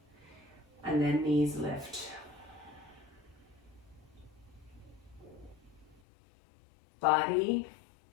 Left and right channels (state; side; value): drops out; right; at 6.0 s